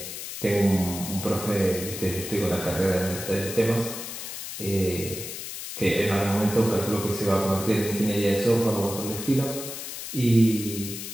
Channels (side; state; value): left; noise; hiss, 8 dB below the sound